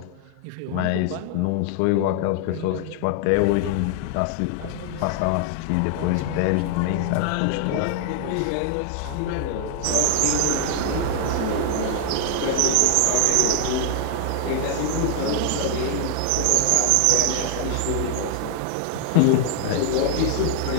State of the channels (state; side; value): different; both; correlation 0.00